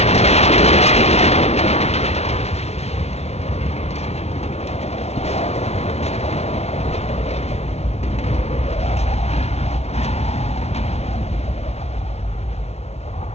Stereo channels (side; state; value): right; late; 0.31 ms